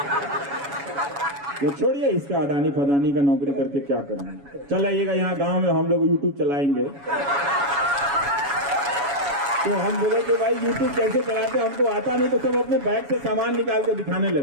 ये छोड़िए इसका अडानी फदानी का नौकरी करके क्या करेंगे, चल आइएगा यहाँ गांव में हम लोग यूट्यूब चलाएंगे। तो हम बोले कि भाई यूट्यूब कैसे चलाते, हमको आता नहीं। तो सब अपने बैग से सामान निकाल के दिखाने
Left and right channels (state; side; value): late; left; 7.1 ms